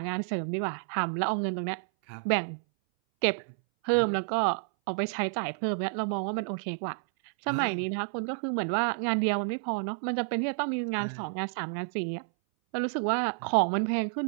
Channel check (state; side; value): silent; left; 58 dB below the other